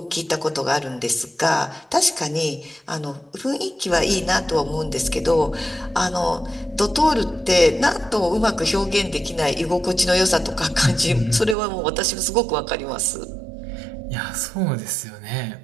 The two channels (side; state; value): left; drops out; at 11.6 s